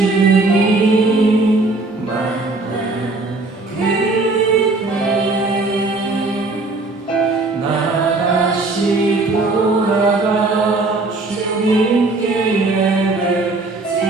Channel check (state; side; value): quieter; left; 3.3 dB